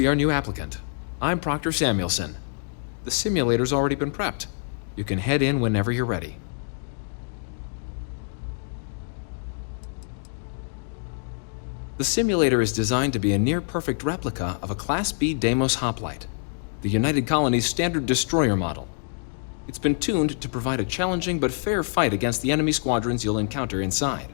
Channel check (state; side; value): silent; right; digital silence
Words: our new applicant. I'm Proctor Samuelson. The simulator's already been prepped. You can head in whenever you're ready. The simulator is designed to be a near-perfect replica of a Class B Deimos hoplite, the United Colony's standard destroyer model. It's been tuned to provide a challenging but fair fight against the enemy squadrons you'll encounter inside.